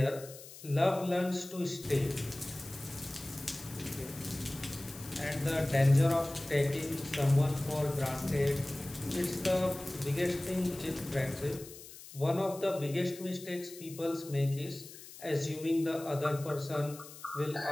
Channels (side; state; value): left; noise; hiss, 16 dB below the sound